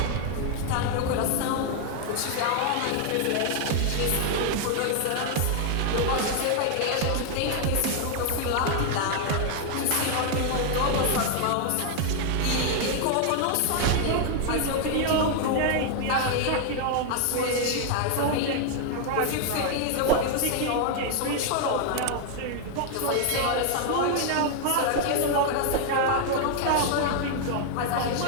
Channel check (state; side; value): different; both; correlation 0.00